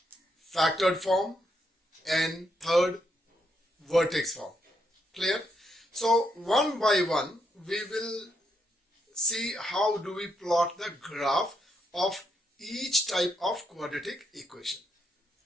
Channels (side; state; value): both; normal; correlation 0.79